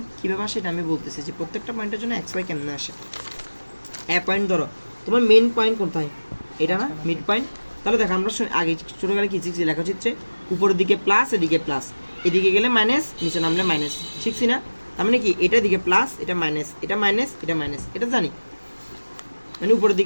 কীভাবে আসে এটা আমি বলতেছি, যে প্রত্যেকটা পয়েন্টের জন্য এক্স ওয়াই কেমনে আসে। এ পয়েন্ট ধরো তোমার মেন পয়েন্ট কোথায়, এটা না মিড পয়েন্ট, তাহলে দেখো আমরা আগে ছোটোবেলায় কী শিখছি, লেখাচিত্রে উপরের দিকে প্লাস, এদিকে প্লাস, এদিকে গেলে মাইনাস, নিচে নামলে মাইনাস, শিখছি না। তার মানে কি এটা দিকে প্লাস, এটা মাইনাস, এটা মাইনাস, এটা মাইনাস, এটা জানি, মানে উপরের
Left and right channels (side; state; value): both; inverted; correlation -1.00